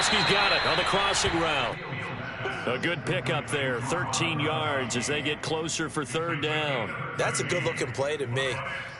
got it on the crossing route. A good pickup there. 13 yards as they get closer for 3rd down. That's a good-looking play to me.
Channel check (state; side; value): identical; both; correlation 1.00